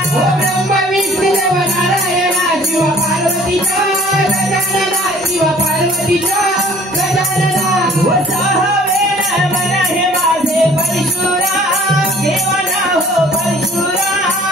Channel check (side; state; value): both; normal; correlation 0.52